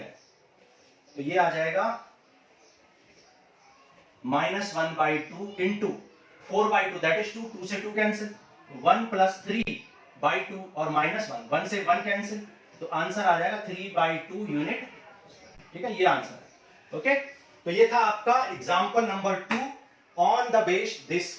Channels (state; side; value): identical; both; correlation 1.00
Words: तो ये आ जाएगा -1/2 इंटू 4/2 दैट इज 2, 2 से 2 कैंसिल, 1 + 3/2 और -1 1 से 1 कैंसिल, तो आंसर आ जाएगा 3/2 यूनिट, ठीक है, ये आंसर है। ओके, तो ये था आपका example number 2 on the base this